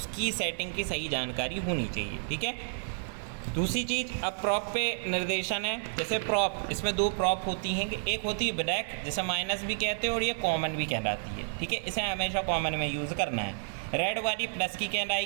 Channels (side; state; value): left; silent; digital silence